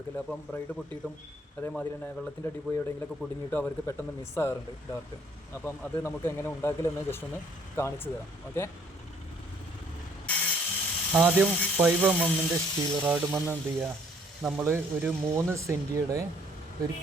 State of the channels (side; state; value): both; normal; correlation 0.62